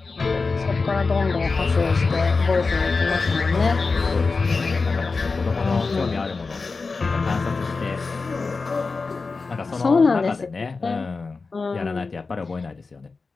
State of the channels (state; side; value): quieter; right; 4.2 dB